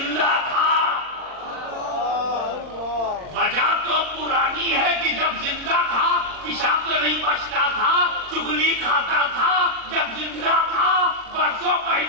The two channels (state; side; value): late; left; 39 ms